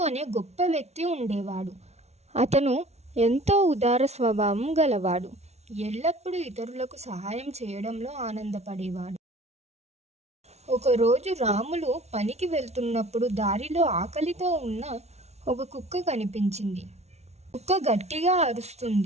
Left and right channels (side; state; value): left; late; 0.31 ms